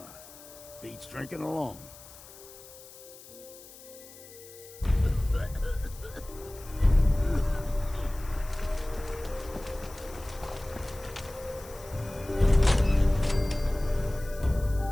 Beats drinking alone.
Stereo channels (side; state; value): left; noise; hiss, 19 dB below the sound